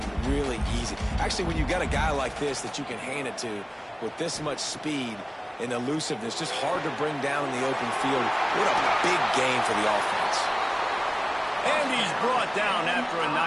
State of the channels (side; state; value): both; identical; correlation 1.00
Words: really easy. Actually, when you got a guy like this that you can hand it to with this much speed and elusiveness, just hard to bring down in the open field. What a big game for the offense. And he's brought down after a